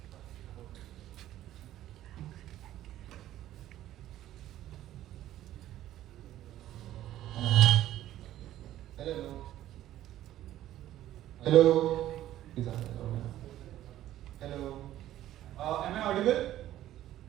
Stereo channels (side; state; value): left; quieter; 13.3 dB